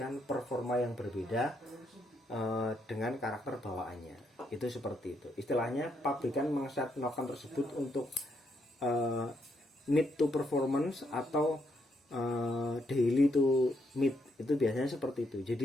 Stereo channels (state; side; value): normal; both; correlation 0.76